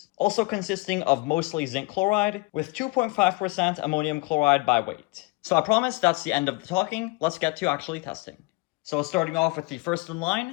also consisting of mostly zinc chloride with 2.5% ammonium chloride by weight. So I promise that's the end of the talking. Let's get to actually testing. So starting off with the first in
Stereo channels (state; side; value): quieter; right; 24.8 dB